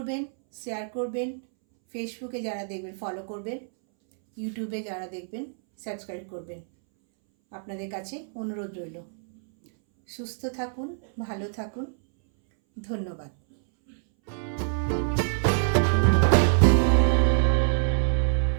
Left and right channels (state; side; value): silent; left; 61 dB below the other